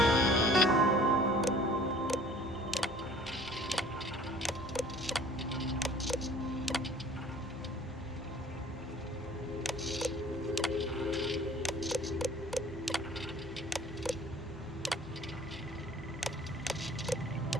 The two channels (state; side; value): normal; both; correlation 0.51